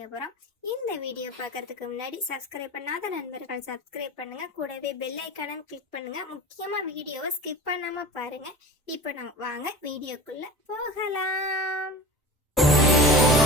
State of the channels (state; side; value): normal; both; correlation 0.33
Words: போகிறோம். இந்த வீடியோ பார்க்கறதுக்கு முன்னாடி சப்ஸ்கிரைப் பண்ணாத நண்பர்கள் சப்ஸ்கிரைப் பண்ணுங்கள். கூடவே பெல் ஐக்கானும் கிளிக் பண்ணுங்கள். முக்கியமாக வீடியோவை ஸ்கிப் பண்ணாமல் பாருங்கள். இப்போ நம்ம வாங்க வீடியோக்குள்ளே போகலாம்.